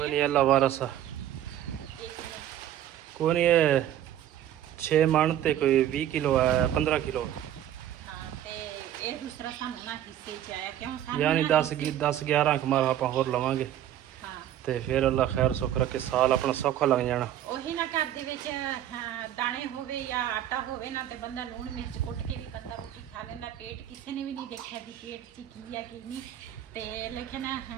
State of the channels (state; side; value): quieter; left; 11.6 dB